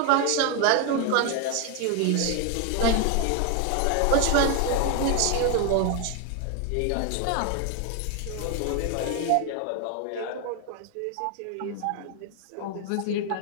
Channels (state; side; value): different; both; correlation 0.01